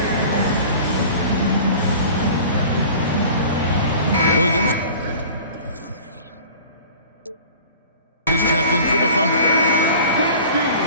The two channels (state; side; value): inverted; both; correlation -0.43